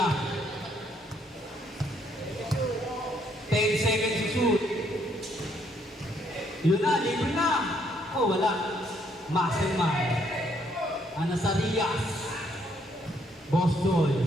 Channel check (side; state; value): both; normal; correlation 0.70